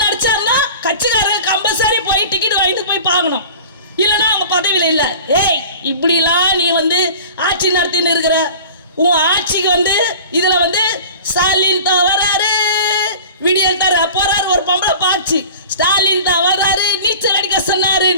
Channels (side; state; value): both; inverted; correlation -0.40